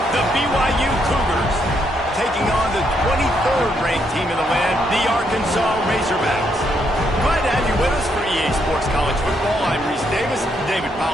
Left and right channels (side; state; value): both; normal; correlation 0.76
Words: the BYU Cougars, taking on the 23rd ranked team in the land, the Arkansas Razorbacks. Glad to have you with us for EA Sports College Football. I'm Reese Davis, David